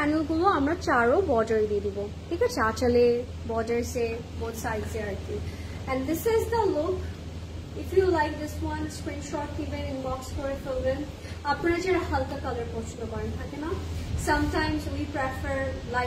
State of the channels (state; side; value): identical; both; correlation 1.00